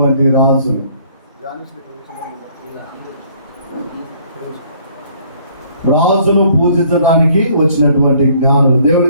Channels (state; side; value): inverted; both; correlation -0.61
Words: రాజులు, రాజును పూజించడానికి వచ్చినటువంటి జ్ఞానులు.